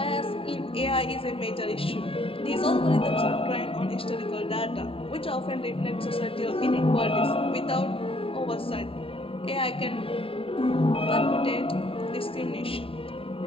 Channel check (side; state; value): right; late; 0.27 ms